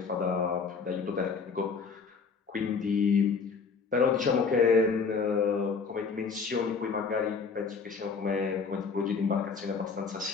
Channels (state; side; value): quieter; right; 5.3 dB